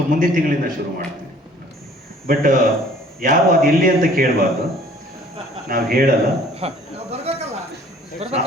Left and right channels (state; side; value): normal; both; correlation 0.54